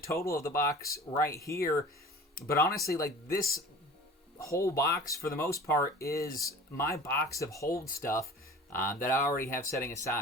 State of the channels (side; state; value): both; normal; correlation 0.41